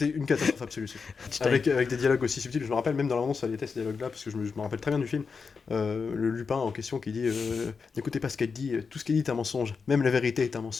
une catastrophe absolue. Avec des dialogues aussi subtils. Je me rappelle même dans l'annonce, ça était ces dialogues-là, parce que je me rappelle très bien du film. Le Lupin en question qui dit n'écoutez pas ce qu'elle dit, tout ce qu'elle dit est un mensonge. Même la vérité est un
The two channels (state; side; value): quieter; right; 5.2 dB